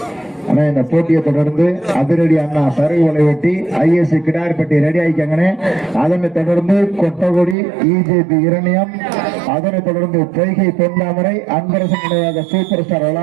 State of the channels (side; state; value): left; drops out; at 7.6 s